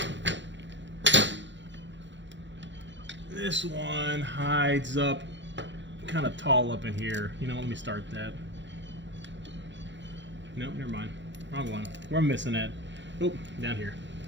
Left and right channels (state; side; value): late; left; 0.53 ms